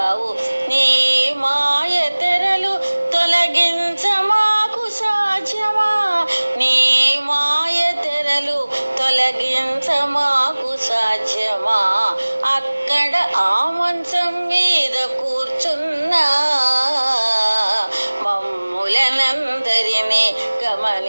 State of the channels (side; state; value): both; inverted; correlation -1.00